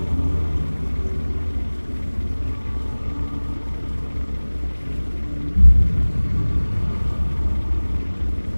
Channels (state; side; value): inverted; both; correlation -1.00